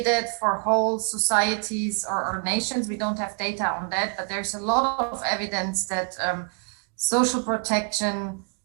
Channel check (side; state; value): left; quieter; 39.0 dB